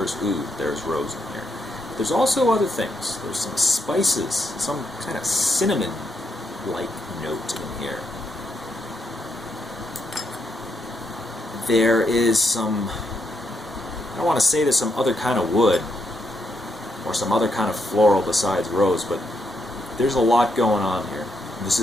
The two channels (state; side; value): normal; both; correlation 0.79